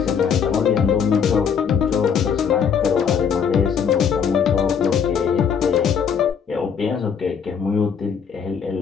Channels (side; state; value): right; quieter; 7.0 dB